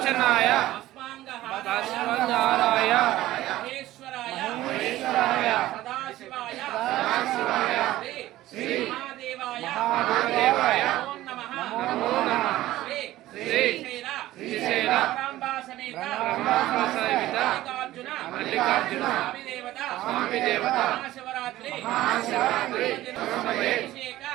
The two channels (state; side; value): quieter; left; 15.6 dB